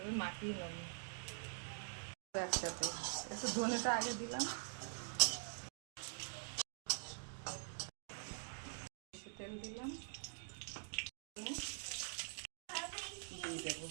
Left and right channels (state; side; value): silent; left; digital silence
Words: মাখিয়ে নেব একসাথে। একটু ধনেটা আগে দিলাম, তেল দিলাম, দিয়ে দেবো,